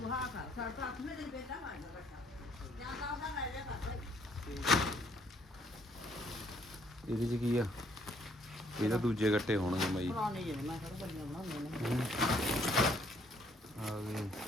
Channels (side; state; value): both; normal; correlation 0.66